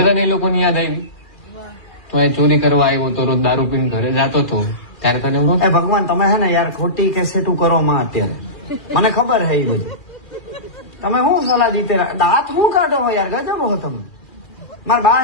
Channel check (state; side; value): late; right; 2.4 ms